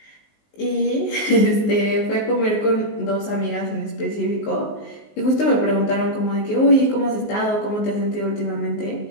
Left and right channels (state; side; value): late; right; 19 ms